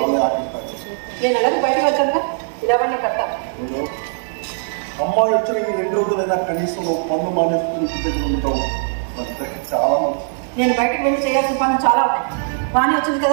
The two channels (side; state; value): left; silent; 66 dB below the other